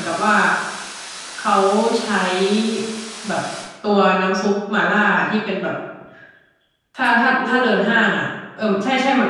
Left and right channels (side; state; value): both; identical; correlation 1.00